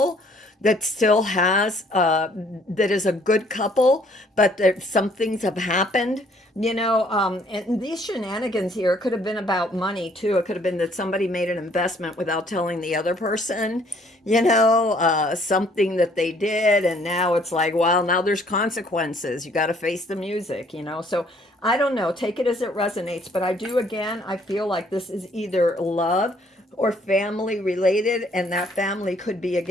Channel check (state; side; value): normal; both; correlation 0.62